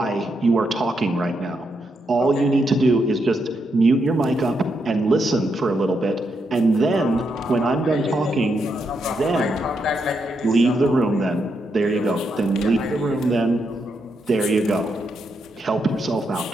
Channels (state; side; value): normal; both; correlation 0.81